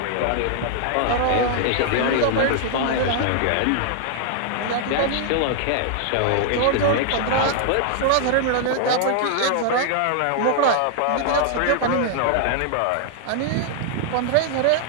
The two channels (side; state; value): both; different; correlation -0.01